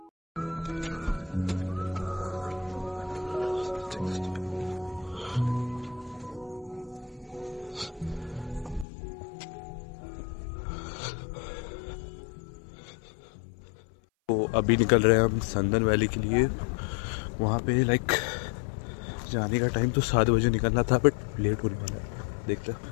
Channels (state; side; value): drops out; right; at 8.8 s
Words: तो अभी निकल रहे हैं हम संदन वैली के लिए। वहाँ पे लाइक जाने का टाइम तो 7 बजे निकलना था, बट लेट होने वाला है। देखते हैं।